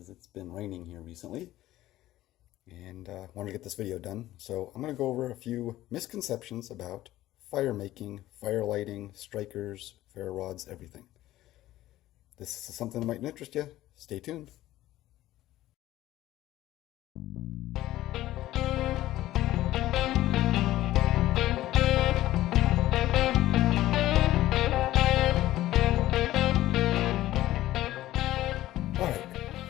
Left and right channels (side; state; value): right; quieter; 15.1 dB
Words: it's been raining here recently and wanted to get this video done. So I'm going to go over a few misconceptions about fire making, fire lighting, strikers, ferrule rods, everything. This is something that might interest you. Stay tuned. All right,